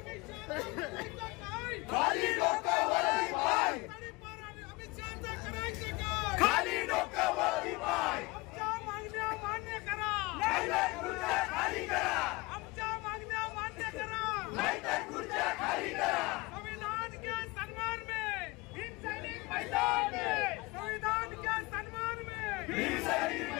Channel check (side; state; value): right; quieter; 23.7 dB